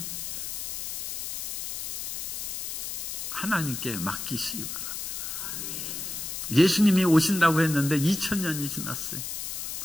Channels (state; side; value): noise; left; hiss, 4 dB below the sound